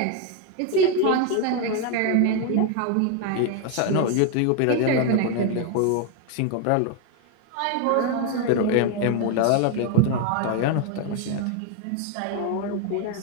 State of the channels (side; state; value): both; different; correlation 0.01